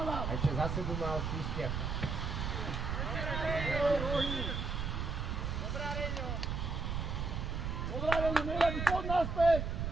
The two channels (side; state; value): right; noise; rumble, 2 dB below the sound